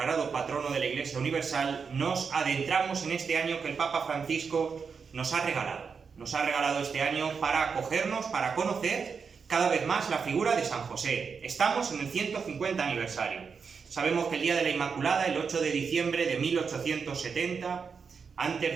patrono de la Iglesia Universal, nos adentramos en este año que el Papa Francisco nos ha regalado. Nos ha regalado este año para acogernos, para conocer cada vez más la figura de San José. Estamos en el 150 aniversario. Sabemos que el día de la Inmaculada, el 8 de diciembre de 1870, antes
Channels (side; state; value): left; quieter; 5.7 dB